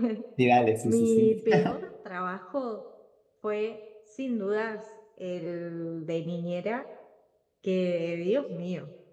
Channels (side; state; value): both; identical; correlation 1.00